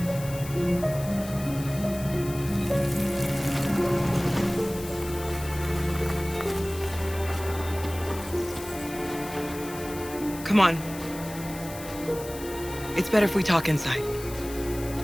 Come on. It's better if we talk inside.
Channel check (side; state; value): left; noise; hiss, 14 dB below the sound